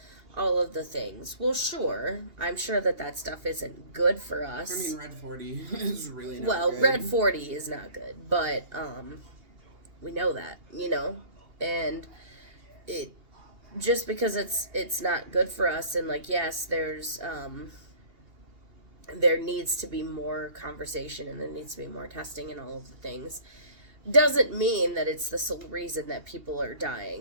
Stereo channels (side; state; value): left; late; 2.8 ms